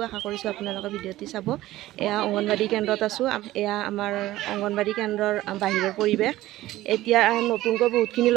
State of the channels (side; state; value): left; quieter; 16.0 dB